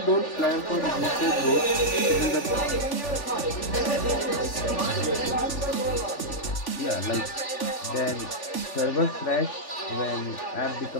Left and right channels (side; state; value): right; late; 3.4 ms